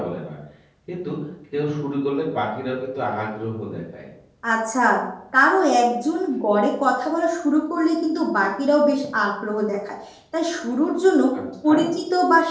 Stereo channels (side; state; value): both; identical; correlation 1.00